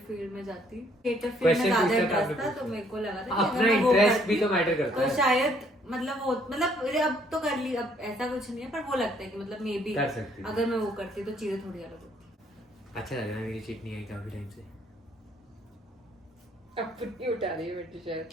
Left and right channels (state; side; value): normal; both; correlation 0.65